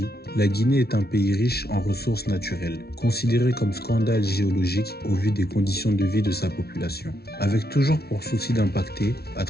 la Guinée est un pays riche en ressources naturelles, considéré comme scandale géologique au vu des conditions de vie de sa population. Avec toujours pour souci d'impacter, à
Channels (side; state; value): right; late; 0.45 ms